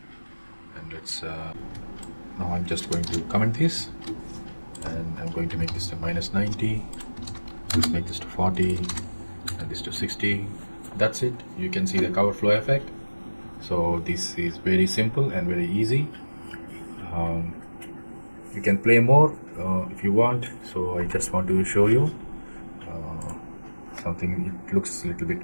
And let's now I'm just going to comment this, and I'm going to make this to -90. Let's make this to 40 and this to 60. That's it. You can see the cover flow effect. So this is very simple and very easy. You can play more if you want. So I just want to show you something. It looks a little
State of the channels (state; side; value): inverted; both; correlation -1.00